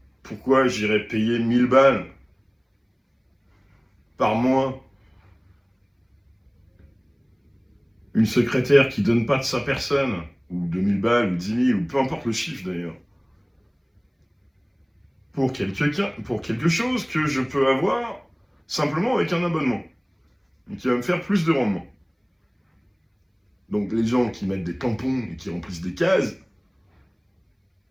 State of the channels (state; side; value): identical; both; correlation 1.00